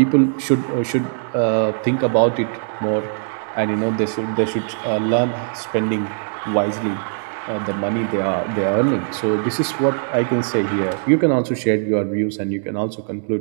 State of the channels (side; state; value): left; silent; digital silence